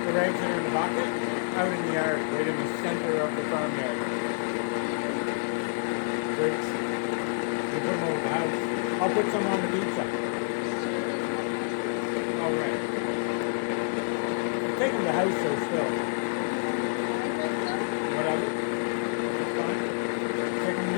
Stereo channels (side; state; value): right; silent; 59 dB below the other